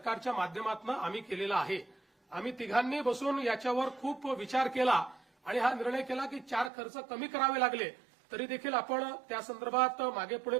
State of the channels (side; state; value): left; drops out; at 6.7 s